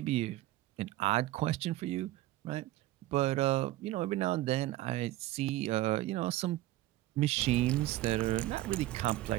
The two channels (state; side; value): quieter; left; 16.0 dB